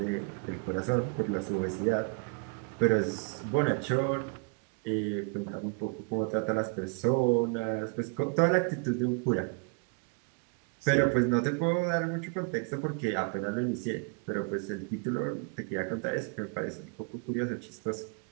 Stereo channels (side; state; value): left; quieter; 35.4 dB